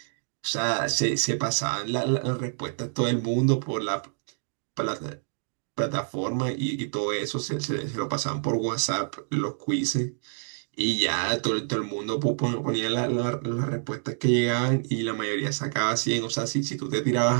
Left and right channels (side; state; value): left; silent; digital silence